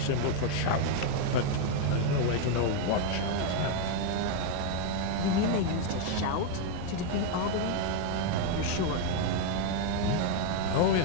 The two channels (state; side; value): different; both; correlation 0.01